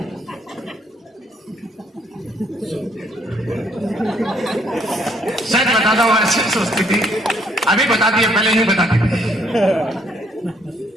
सच बताता हूं, ऐसे सोचती थी, अभी बताती है, पहले नहीं बताती थी।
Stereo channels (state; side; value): normal; both; correlation 0.67